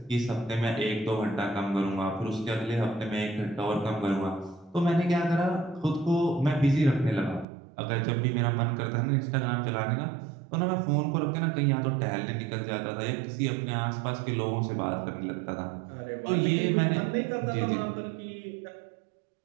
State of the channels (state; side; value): drops out; left; at 7.5 s